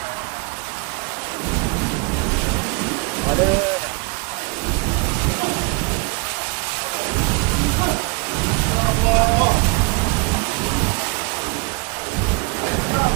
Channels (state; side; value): quieter; left; 29.6 dB